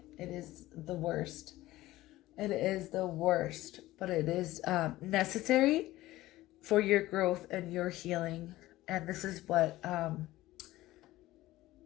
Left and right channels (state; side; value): quieter; right; 16.8 dB